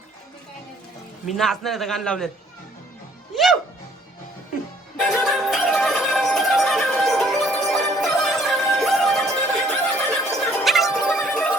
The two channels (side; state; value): both; normal; correlation 0.61